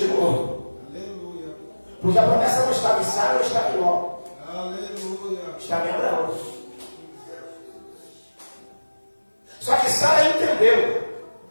Aleluia. Porque a promessa não estava em Sara, não estava em Ló. Aleluia. Estava em Abraão. Só que Sara entendeu.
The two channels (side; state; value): both; inverted; correlation -1.00